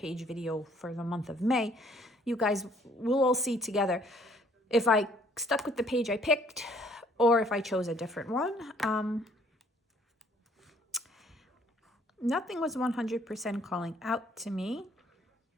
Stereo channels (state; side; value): normal; both; correlation 0.61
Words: video for the month of May, you guys will all see together if I stuck with the page I picked or if I chose a different one. Nothing was 100% calling out to me